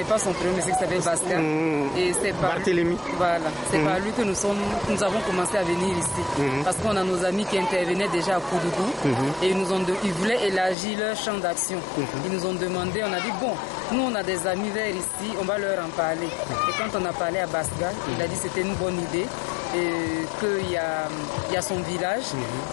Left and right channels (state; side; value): drops out; right; at 10.8 s